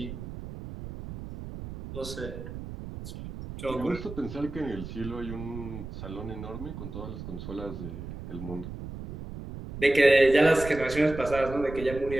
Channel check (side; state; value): right; noise; rumble, 10 dB below the sound